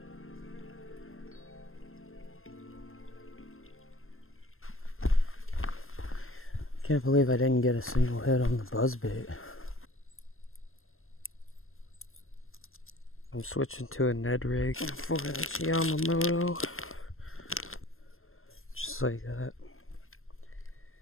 Can't believe I didn't get a single hit on the buzzbait. I'm switching to a Ned rig for this Yamamoto. Just like that.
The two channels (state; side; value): late; right; 0.60 ms